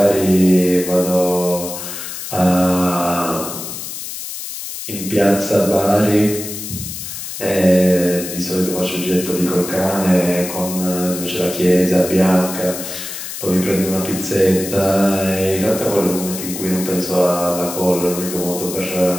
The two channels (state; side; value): noise; left; hiss, 8 dB below the sound